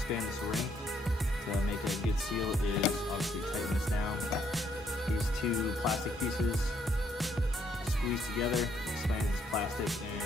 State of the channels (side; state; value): both; normal; correlation 0.71